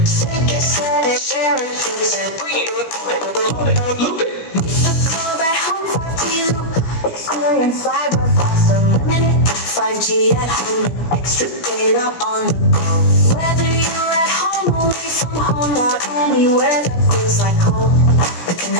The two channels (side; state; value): right; late; 17 ms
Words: Bring it, love it, loop it. Experience cyber fast, unlimited 5G at home, extra data on the go. Whether you're at home, away from home, or anywhere that feels like home, the